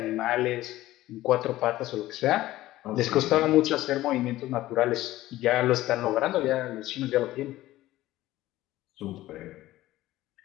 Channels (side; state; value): right; quieter; 16.0 dB